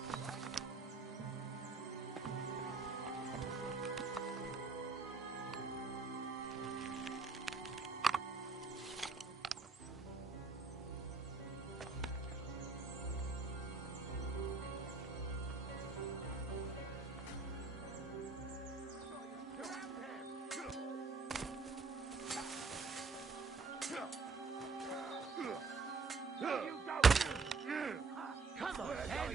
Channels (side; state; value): left; quieter; 4.3 dB